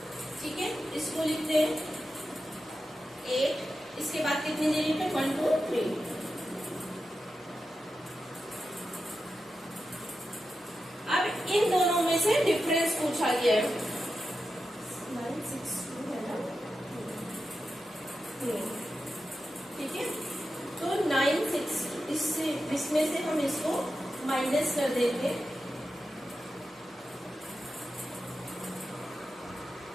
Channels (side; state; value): both; normal; correlation 0.91